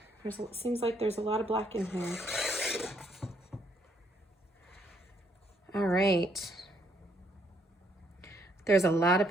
Seems like there's a lot of black in here. All right. There's a lot of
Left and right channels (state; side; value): normal; both; correlation 0.71